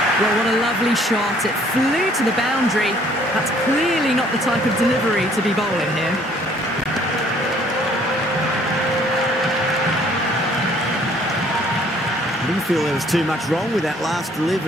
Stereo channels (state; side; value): normal; both; correlation 0.60